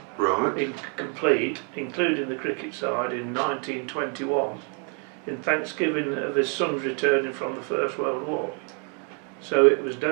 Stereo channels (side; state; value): left; quieter; 39.5 dB